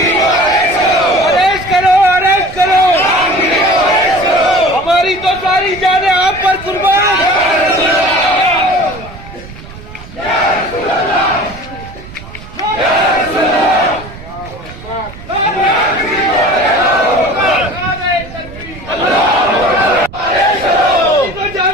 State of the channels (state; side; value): noise; right; rumble, 16 dB below the sound